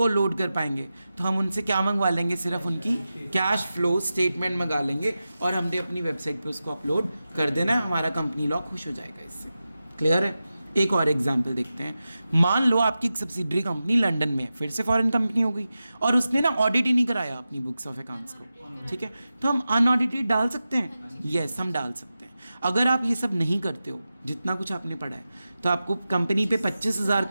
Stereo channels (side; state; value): both; inverted; correlation -0.93